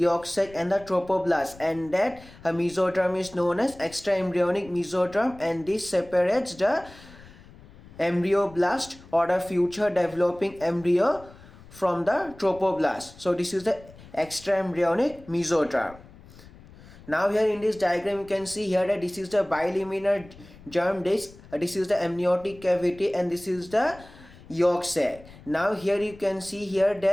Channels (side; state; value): left; noise; rumble, 21 dB below the sound